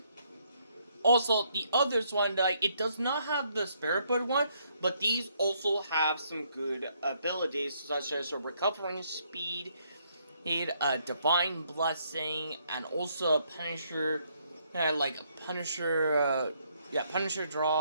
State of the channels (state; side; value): inverted; both; correlation -0.71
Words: Also, the others one, like, it does not have the Spirit Bird one, but these also have some good abilities, such as a recovering speed, a divine blessing, and also a Punisher, Punisher